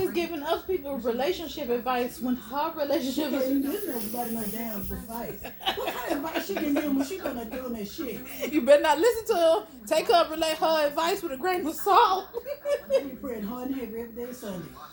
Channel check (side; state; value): both; identical; correlation 1.00